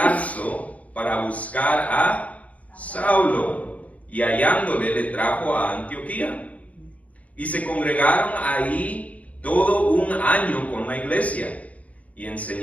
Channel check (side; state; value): right; late; 0.068 ms